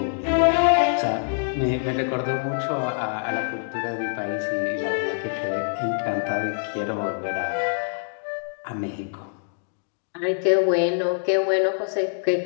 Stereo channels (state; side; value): silent; right; digital silence